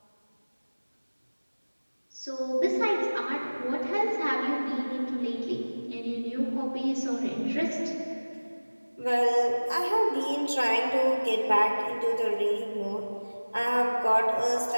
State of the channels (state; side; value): inverted; both; correlation -1.00